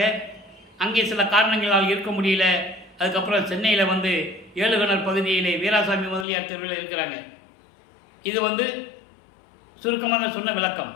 அங்கே சில காரணங்களால் இருக்க முடியல. அதுக்கப்புறம் சென்னையில் வந்து ஏழுகணர் பகுதியிலே வீராசாமி முதலியார் தெருவில் இருக்கிறாங்க. இது சுருக்கமாக சொன்ன விளக்கம்.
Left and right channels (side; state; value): right; drops out; at 6.2 s